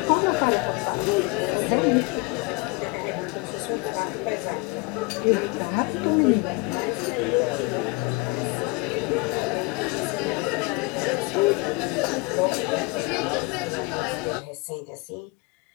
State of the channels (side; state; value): right; quieter; 27.0 dB